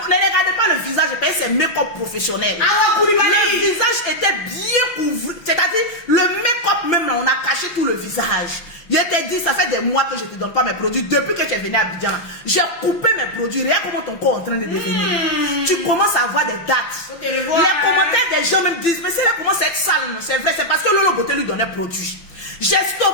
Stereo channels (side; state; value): right; late; 5.9 ms